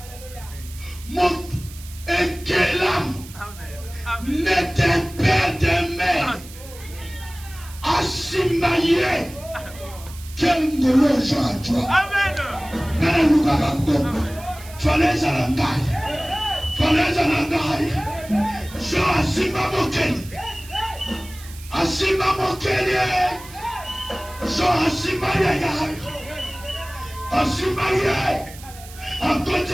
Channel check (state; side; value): noise; right; hiss, 18 dB below the sound